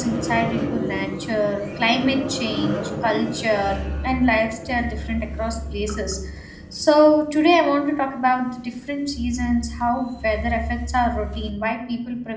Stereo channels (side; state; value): both; identical; correlation 1.00